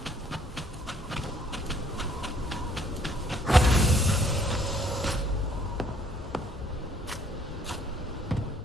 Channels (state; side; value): normal; both; correlation 0.63